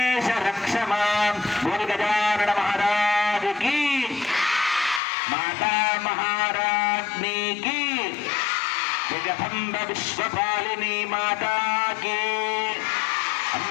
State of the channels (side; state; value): right; drops out; at 5.0 s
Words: రక్ష మాం. బోల్ గజానన మహారాజ్ की, माता महाराज्ञी की, जगदम्ब विश्वपालिनी माता की,